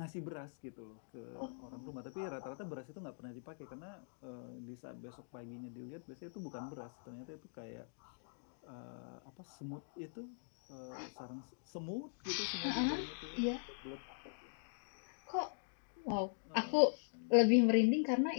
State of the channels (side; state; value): right; silent; digital silence